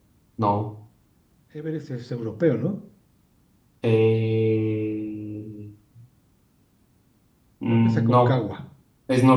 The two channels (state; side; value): identical; both; correlation 1.00